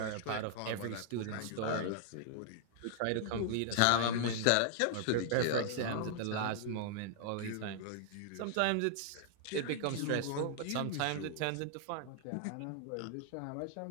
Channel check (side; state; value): both; different; correlation -0.01